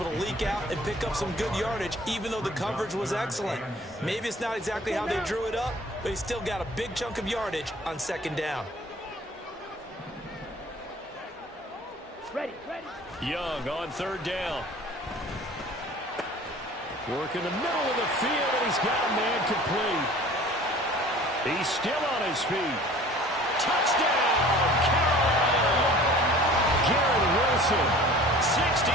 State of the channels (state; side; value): normal; both; correlation 0.47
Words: to leak out and pick up some good yardage, even though the coverage was excellent. Maybe it's not exactly how they drew it up, but he still got a big chunk of yardage on 2nd down. Ready. Young on 3rd down. Work in the middle of the field, and he's got a man complete. He's still on his feet. Touchdown, Carolina! Garrett Wilson,